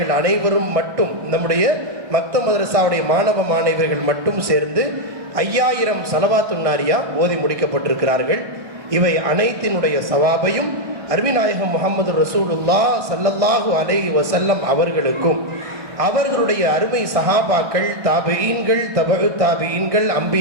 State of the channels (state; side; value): late; left; 1.6 ms